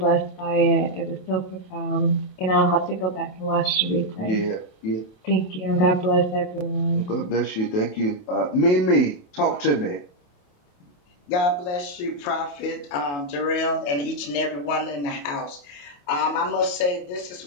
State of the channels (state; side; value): late; right; 28 ms